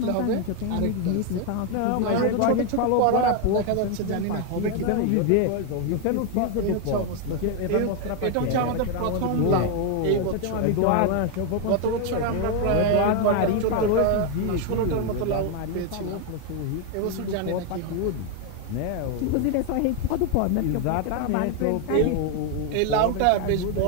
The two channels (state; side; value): different; both; correlation 0.01